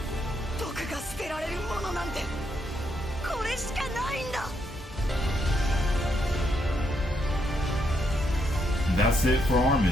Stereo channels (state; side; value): normal; both; correlation 0.77